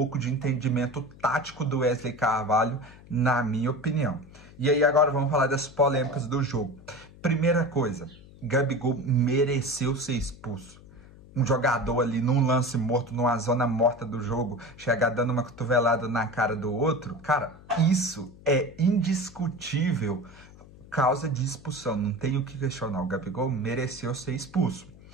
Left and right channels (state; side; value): noise; left; hum, 21 dB below the sound